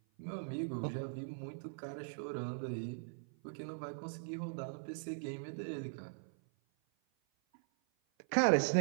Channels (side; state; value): left; silent; 51 dB below the other